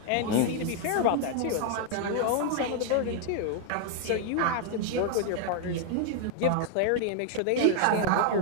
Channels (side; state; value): both; different; correlation 0.00